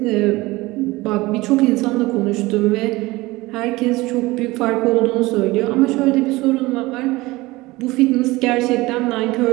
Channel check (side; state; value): left; quieter; 20.5 dB